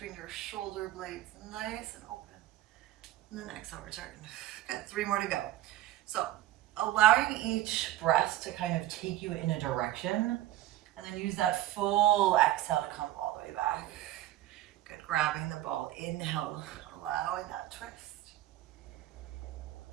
your shoulder blades nice and open. And then exhale, return. Good, 3 more to go. So allowing each breath to kind of take you in a direction, and then use that full exhale to come all the way back. Good, grabbing the ball, inhale, allowing that twist.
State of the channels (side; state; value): left; quieter; 14.4 dB